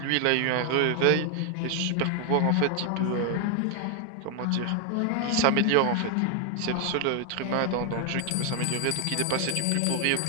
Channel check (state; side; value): different; both; correlation 0.01